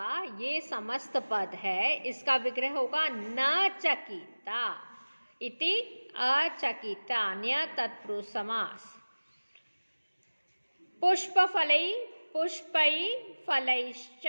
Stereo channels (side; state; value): both; inverted; correlation -1.00